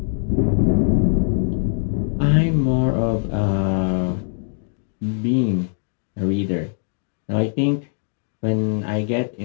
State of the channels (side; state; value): right; silent; digital silence